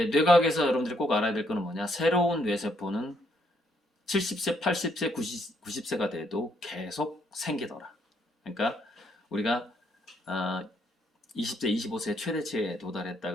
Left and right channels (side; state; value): both; normal; correlation 0.71